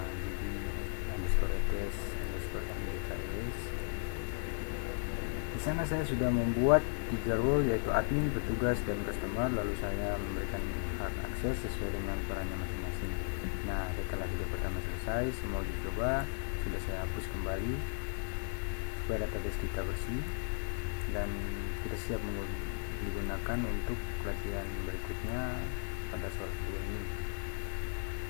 DB_ETS_MDKS. Di sana saya sudah membuat 3 role, yaitu admin, petugas, dan customer, lalu saya memberikan hak akses sesuai dengan perannya masing-masing. Nah, setelah video pertama selesai, semua uji coba sudah saya hapus kembali supaya database kita bersih dan kita siap digunakan untuk pelatihan berikutnya pada soal kedua ini.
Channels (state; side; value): silent; right; 54 dB below the other